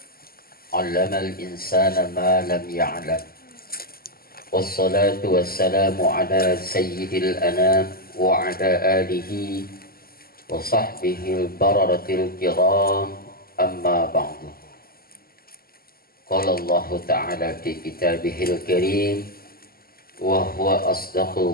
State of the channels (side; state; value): right; late; 0.43 ms